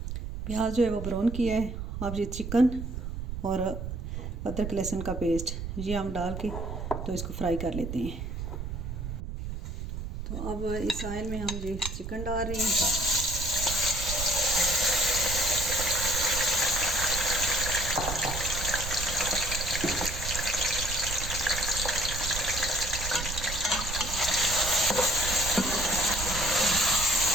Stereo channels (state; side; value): noise; right; rumble, 6 dB below the sound